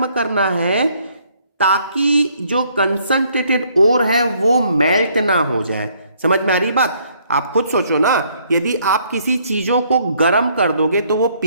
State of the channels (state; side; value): inverted; both; correlation -0.66